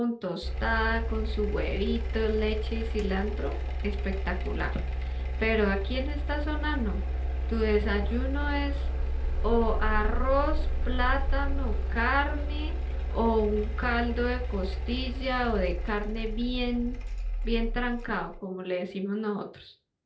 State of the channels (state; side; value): identical; both; correlation 1.00